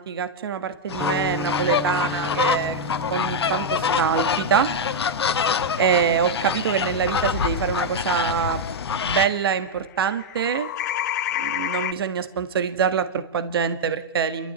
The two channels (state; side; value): normal; both; correlation -0.02